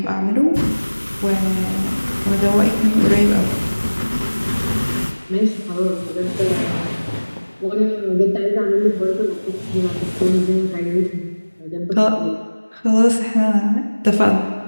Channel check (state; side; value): inverted; both; correlation -1.00